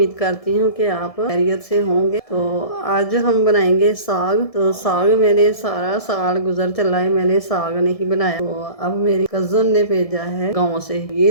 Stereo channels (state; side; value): late; right; 1.6 ms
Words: करती हूँ कि आप खैरियत से होंगे। तो आज हम बनाएंगे साग। तो साग मैंने सारा साल गुजर चला है, मैंने साग नहीं बनाया। तो अब मेरी कज़न ने भेजा है गाँव से।